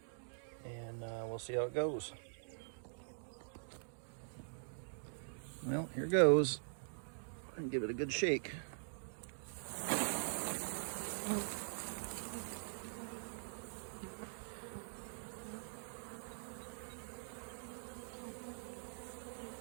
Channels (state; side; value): silent; left; digital silence